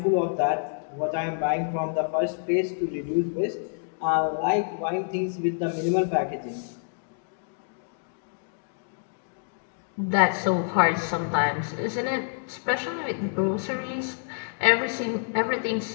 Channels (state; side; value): silent; right; digital silence